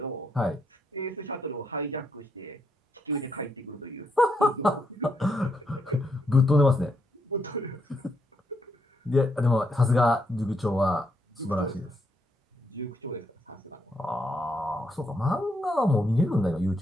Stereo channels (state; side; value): normal; both; correlation 0.78